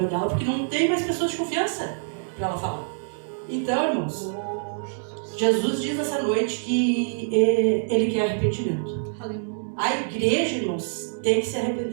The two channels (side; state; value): left; silent; digital silence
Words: dela, porque não tem mais pessoas de confiança para ela falar. Então, irmãos, Jesus diz essa noite que ele quer arrependimento. A igreja, irmãos, tem que se